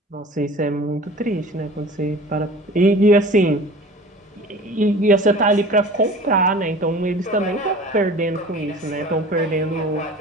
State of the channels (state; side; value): normal; both; correlation 0.41